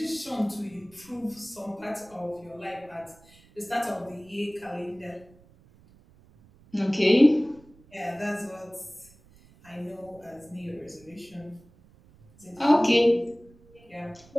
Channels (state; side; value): noise; right; rumble, 27 dB below the sound